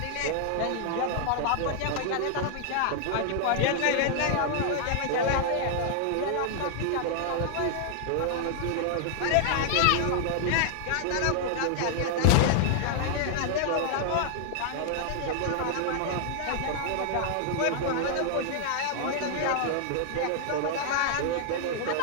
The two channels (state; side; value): different; both; correlation 0.00